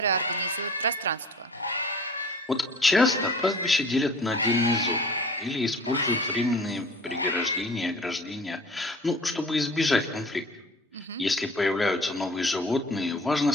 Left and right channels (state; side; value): normal; both; correlation 0.44